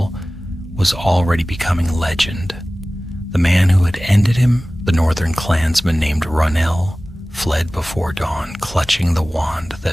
was already becoming legend. The man who had ended him, the northern clansman named Ronel, fled before dawn, clutching the wand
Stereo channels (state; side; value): normal; both; correlation 0.97